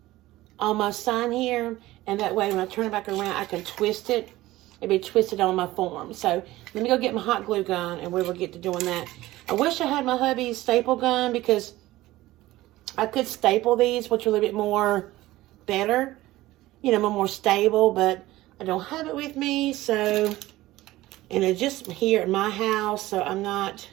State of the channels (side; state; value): left; quieter; 17.1 dB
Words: on my sign here. And that way when I turn it back around, I can twist it. It'll be twisted on my form. So let me go get my hot glue gun and we will get to doing that. I wish I had my hubby's staple gun because I could staple these, which are a little bit more better. You know, more stable, but I don't have it with me, so... And it's just here at my house, so I'm not